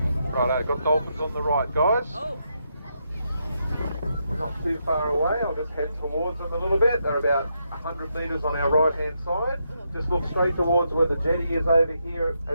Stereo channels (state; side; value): inverted; both; correlation -0.81